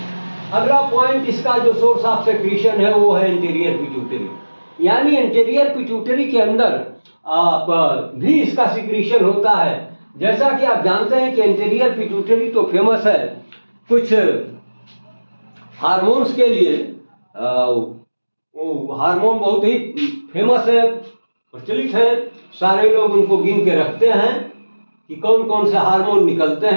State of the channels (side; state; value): both; inverted; correlation -1.00